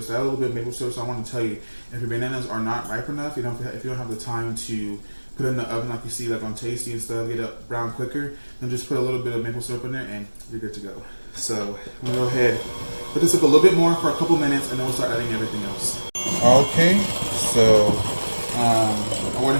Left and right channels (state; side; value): inverted; both; correlation -1.00